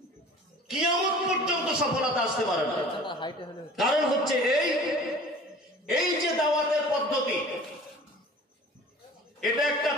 কিয়ামত পর্যন্ত সফলতা আসতে পারে না। কারণ হচ্ছে এই যে দাওয়াতের পদ্ধতি, এটা একটা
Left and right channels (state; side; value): normal; both; correlation 0.44